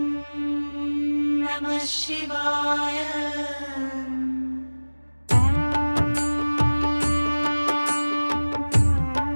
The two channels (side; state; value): both; inverted; correlation -1.00